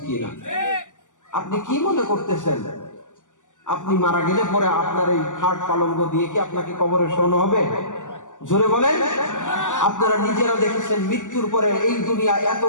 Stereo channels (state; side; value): late; right; 0.87 ms